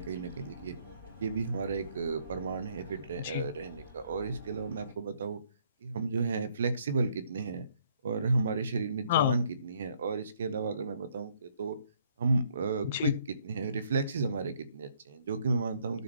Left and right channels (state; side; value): inverted; both; correlation -0.66